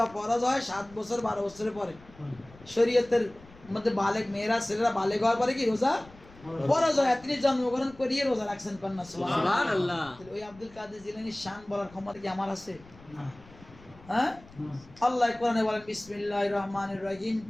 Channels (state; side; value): noise; left; rumble, 23 dB below the sound